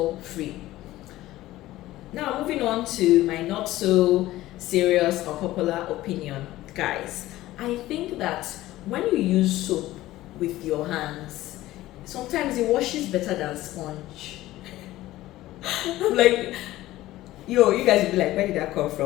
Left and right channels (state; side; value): quieter; right; 16.1 dB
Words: free. Now, moving on to my not so serious or popular opinion. Guys, I think that when you use soap with your hands, sometimes it washes better than sponge. I'm like, yo, you guys will be like, where did that come